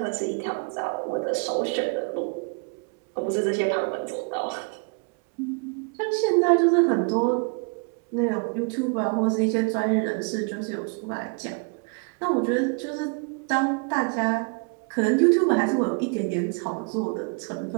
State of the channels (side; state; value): left; quieter; 36.5 dB